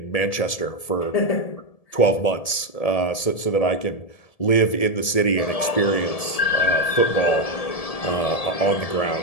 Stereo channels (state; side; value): late; right; 1.7 ms